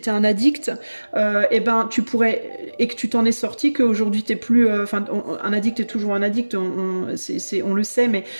un addict, et ben, tu pourrais, et que tu t'en es sorti, qu'aujourd'hui, tu n'es plus... un addict est toujours un addict, on le sait, mais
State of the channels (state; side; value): inverted; both; correlation -1.00